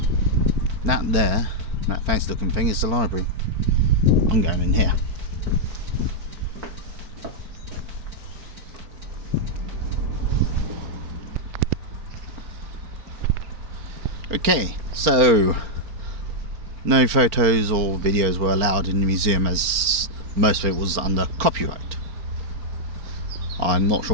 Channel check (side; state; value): left; late; 4.4 ms